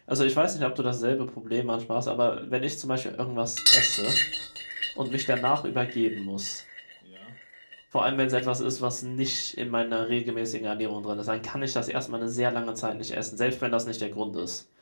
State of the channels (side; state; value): both; inverted; correlation -1.00